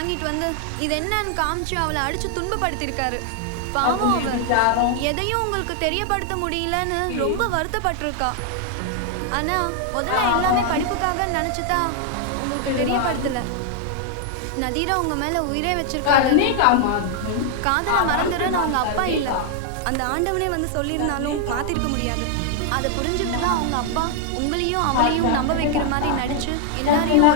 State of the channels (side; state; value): both; different; correlation 0.00